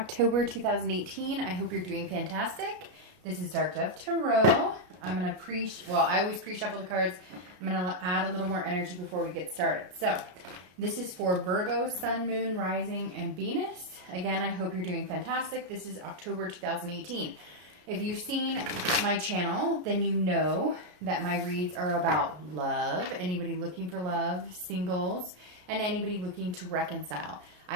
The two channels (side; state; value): left; late; 33 ms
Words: 2018. I hope you're doing fantastic. This is Dark Dove Tarot. I'm going to I always pre-shuffle the cards. I'm going to add a little more energy before we get started. So, this is for Virgo, Sun, Moon, Rising, and Venus. Again, I hope you're doing fantastic. This is October 2018. If you've seen my channel, then you know that my reads are about love, anybody looking for love, singles, and anybody looking to reconcile.